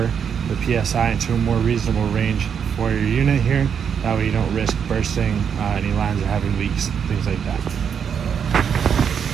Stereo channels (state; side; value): quieter; left; 7.5 dB